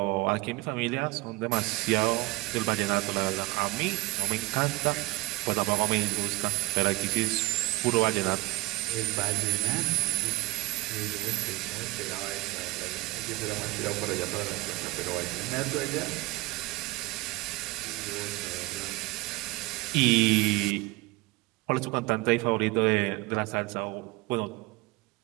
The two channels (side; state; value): left; quieter; 21.3 dB